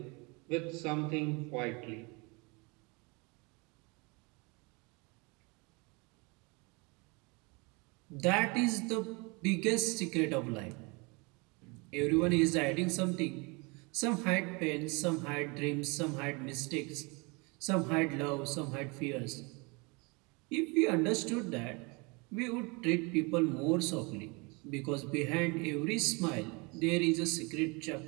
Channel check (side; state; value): left; quieter; 28.7 dB